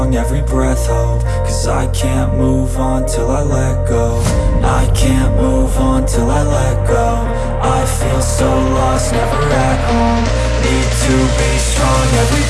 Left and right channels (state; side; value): identical; both; correlation 1.00